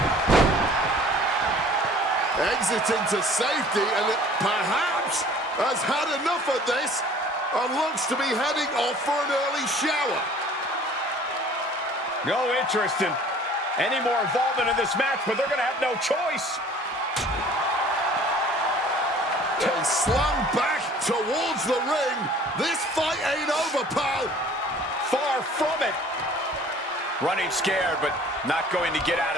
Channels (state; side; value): normal; both; correlation 0.50